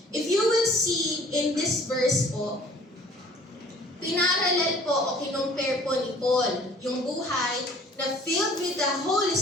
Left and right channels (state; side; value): normal; both; correlation 0.52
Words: If you will see in this verse po, pinaralel po o kinumpare po ni Paul yung buhay na filled with the Holy